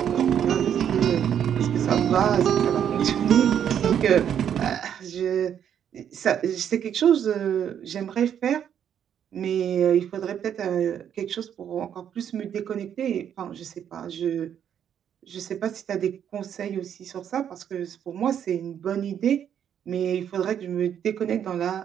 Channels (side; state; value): left; quieter; 9.1 dB